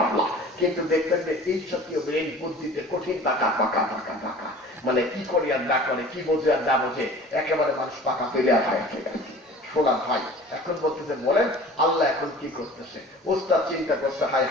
কিন্তু দেখবেন যে এই জাতীয় ব্রেন বুদ্ধিতে কঠিন পাকা পাকা পাকা পাকা, মানে কি করে আর না করে, কি বোঝে আর না বোঝে, একেবারে মানুষ পাকা পেলে আর হয় আছে। শোনা ভাই, এখন বলতেছে বলেন আল্লাহ এখন কি করতেছে? ওস্তাদ চিন্তা করছে, হায়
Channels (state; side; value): normal; both; correlation 0.43